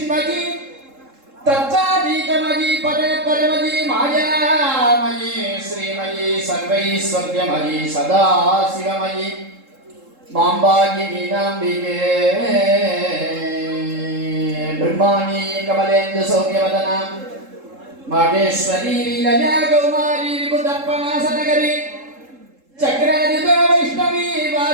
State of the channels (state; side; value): late; left; 3.7 ms